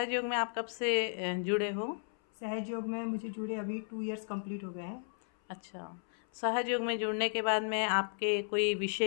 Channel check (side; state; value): right; silent; 55 dB below the other